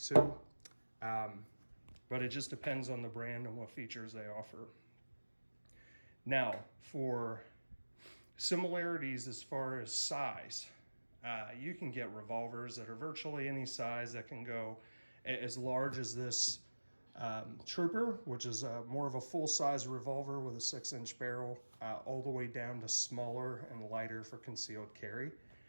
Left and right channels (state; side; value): inverted; both; correlation -1.00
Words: too. But it just depends on the brand and what features they offer. Now, for similarities as far as size, you can get revolvers that are virtually any size that can go as large as this Trooper, which is more of a full-size revolver with a 6-inch barrel, all the way down to smaller and lighter for concealed carry,